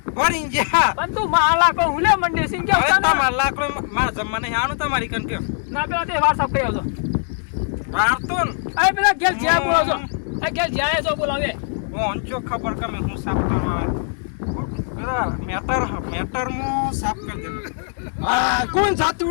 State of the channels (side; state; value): right; silent; digital silence